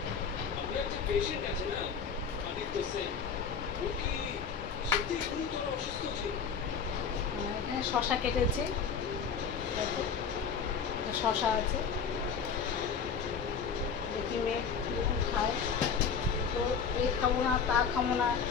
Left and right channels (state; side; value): quieter; right; 6.3 dB